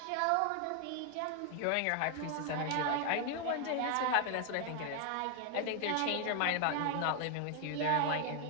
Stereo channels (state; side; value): different; both; correlation 0.00